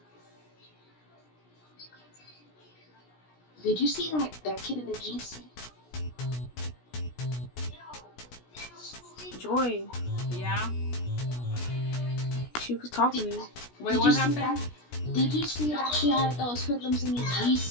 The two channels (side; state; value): right; late; 17 ms